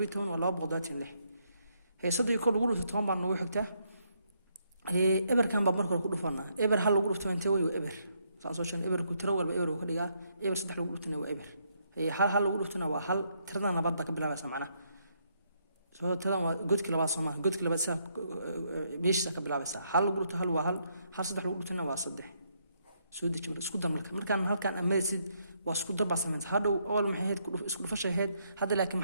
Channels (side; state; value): both; inverted; correlation -0.74